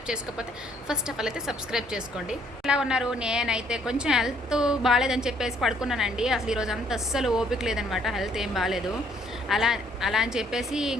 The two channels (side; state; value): both; normal; correlation 0.65